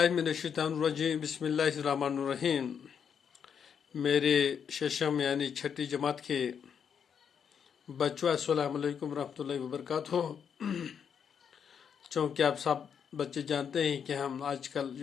बिस्मिल्लाहिर्रहमानिर्रहीम। मेरे शशम यानी छठी जमात के बच्चों अस्सलाम वालेकुम रहमतुल्लाहि व बरकातुहू। चूँकि आप सब बच्चे जानते हैं कि हम आजकल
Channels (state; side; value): quieter; right; 7.4 dB